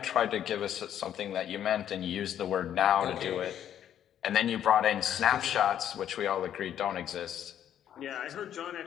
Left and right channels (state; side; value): quieter; right; 10.2 dB